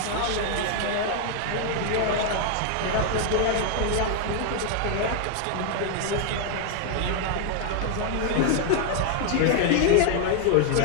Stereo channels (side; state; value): both; different; correlation 0.00